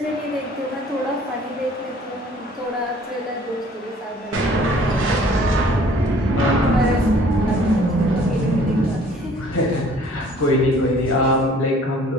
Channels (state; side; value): normal; both; correlation 0.54